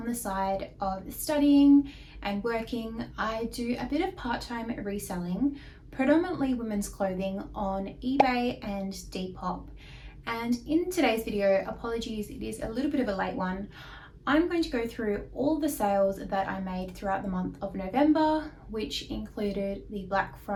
the side of studying and working, I do a bit of part-time reselling, predominantly women's clothing on eBay and Depop. And in today's video, apologies, it is a little bit of a late one. I'm going to go through all the sales that I made throughout the month of November, which included the Black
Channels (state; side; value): identical; both; correlation 1.00